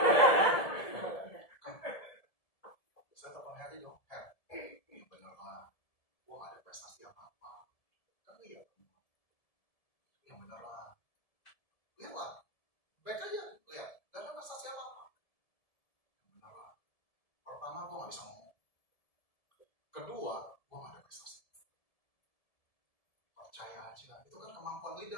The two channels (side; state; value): right; late; 1.7 ms